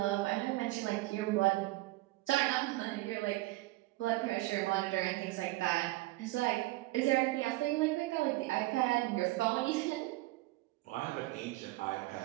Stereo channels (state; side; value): quieter; left; 19.6 dB